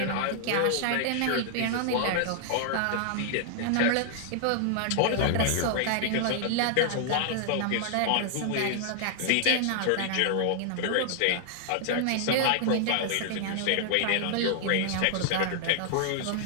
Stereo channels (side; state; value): both; different; correlation 0.00